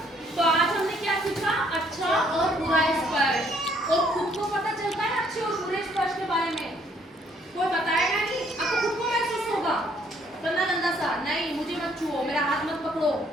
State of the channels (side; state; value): both; normal; correlation 0.65